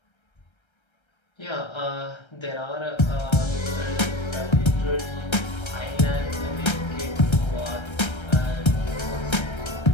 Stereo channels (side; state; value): right; late; 1.3 ms